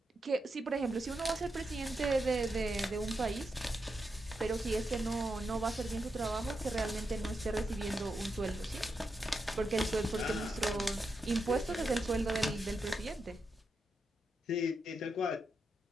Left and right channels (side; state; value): both; normal; correlation 0.86